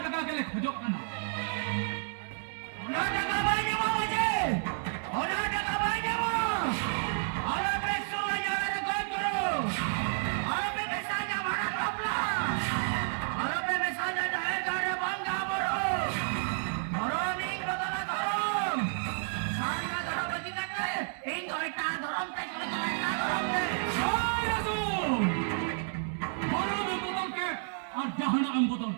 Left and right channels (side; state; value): left; silent; 57 dB below the other